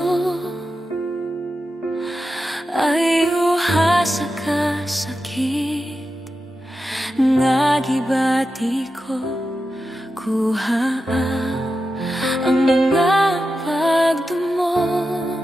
ay uha sa kasakit nga gibati ko. Kuha ang mga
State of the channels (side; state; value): both; normal; correlation 0.90